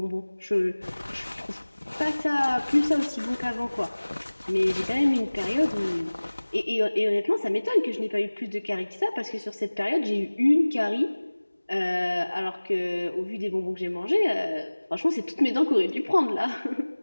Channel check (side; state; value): both; inverted; correlation -1.00